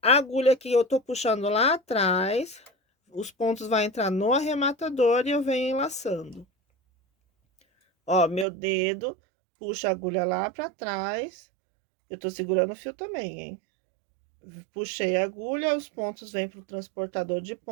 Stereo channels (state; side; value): drops out; left; at 8.5 s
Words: A agulha que eu tô puxando lá atrás, os pontos vai entrar no arrematador e eu venho enlaçando. Ó, meu dedo puxa a agulha lá pra trás. Eu tô segurando o fio também, hein? Puxei a agulha, os pontos vêm pro transportador de